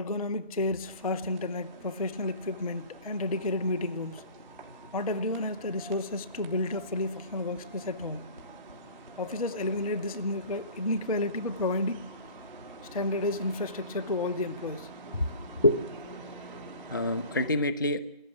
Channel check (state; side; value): inverted; both; correlation -0.44